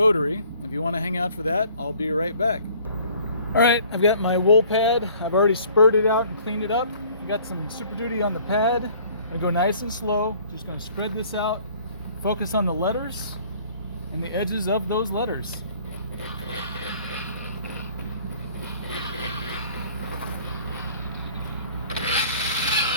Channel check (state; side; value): inverted; both; correlation -0.54